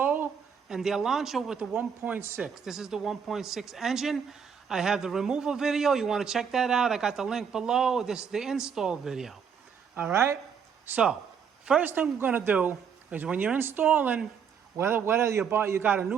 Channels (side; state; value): left; quieter; 7.0 dB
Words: and the Elantra with the 1.6. This is the 1.6 engine. I have the removal video. You want to check that out. I got the link below. This is the install video. All right? So, first thing we're going to do is when you're installing, whether you got a